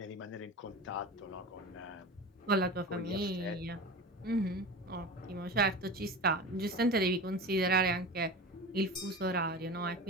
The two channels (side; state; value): both; normal; correlation 0.30